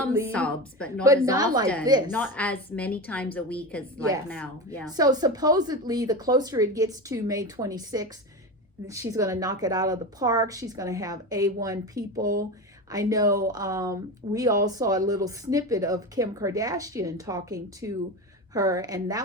She had some subs, but not as often. Like this. Not as many times a week as now. Yeah. So supposedly, the closer it gets to May 26th, she's going to knock it out of the park. She's going to have A1 people. I know we all saw a little snippet of Kim Kardashian talking to her, and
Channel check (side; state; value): both; normal; correlation 0.23